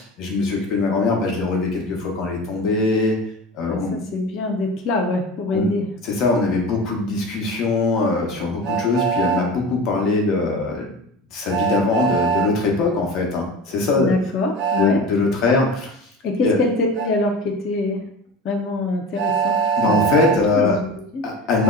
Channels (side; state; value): both; normal; correlation 0.32